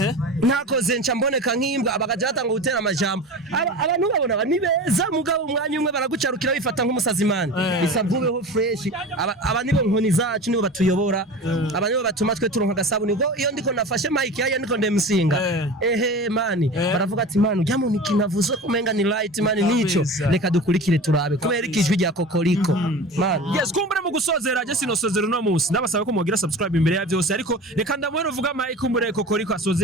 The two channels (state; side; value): normal; both; correlation 0.33